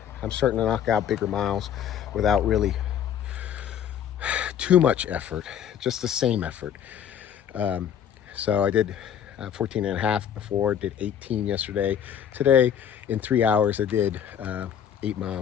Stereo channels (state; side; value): quieter; right; 9.1 dB